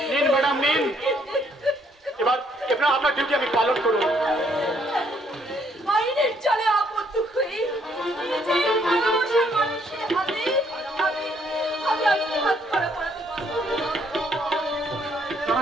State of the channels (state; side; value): normal; both; correlation 0.68